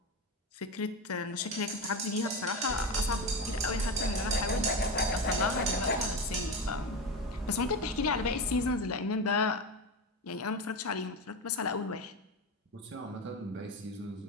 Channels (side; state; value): both; normal; correlation 0.20